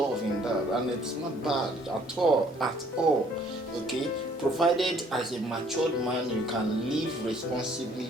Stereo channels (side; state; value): both; normal; correlation 0.60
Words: in that, and it's not bad at all. Okay, provided as a matured man you can live